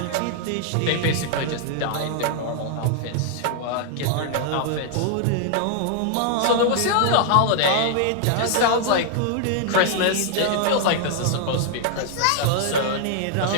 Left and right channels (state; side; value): different; both; correlation 0.00